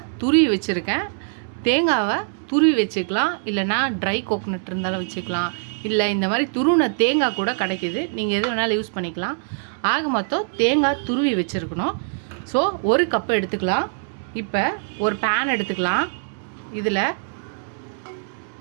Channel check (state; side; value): silent; left; digital silence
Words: துருவி வச்சுருக்கேன். தேங்காவை துருவி வச்சுக்கலாம், இல்லைனா ட்ரை கோக்னட் இருந்தாலும் வச்சுக்கலாம், இல்லை இந்த மாதிரி துருவின தேங்காய் கூட கிடைக்கிது, நீங்கள் எது வேணாலும் யூஸ் பண்ணிக்கலாம். ஆக மொத்தம் தேங்காய் துருவி வச்சுருக்கணும். ஸோ ஒரு கப்பு எடுத்துக்கலாம். இப்போ ஒரு பேன் எடுத்துக்கலாம். இதில்